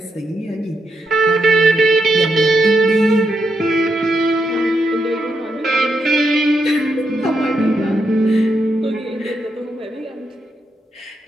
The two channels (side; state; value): both; normal; correlation 0.82